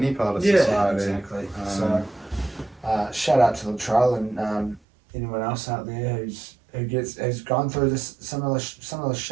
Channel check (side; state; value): left; drops out; at 4.8 s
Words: part of society. Exactly. So, shout out to the trial and anyone else out there who's gone through this similar